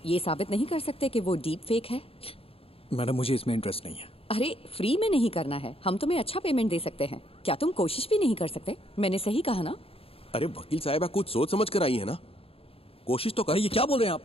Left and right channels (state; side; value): late; right; 0.27 ms